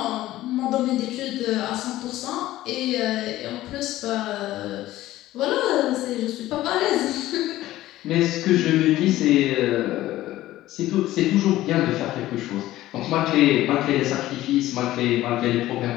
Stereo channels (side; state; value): right; quieter; 15.4 dB